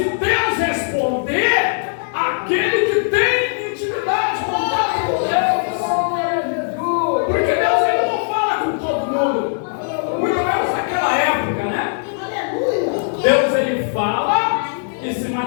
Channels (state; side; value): silent; right; 66 dB below the other